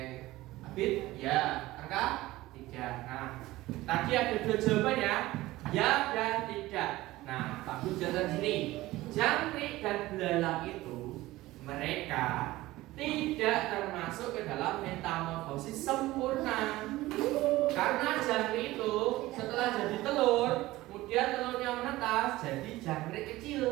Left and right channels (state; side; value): quieter; left; 17.8 dB